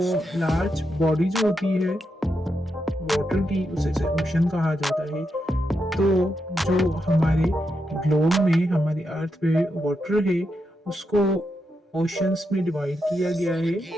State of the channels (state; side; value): normal; both; correlation 0.84